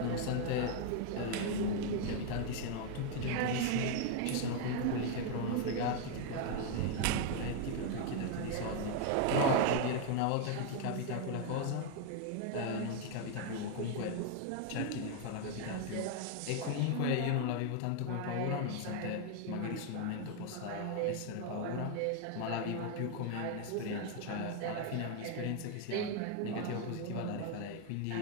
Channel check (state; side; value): different; both; correlation 0.01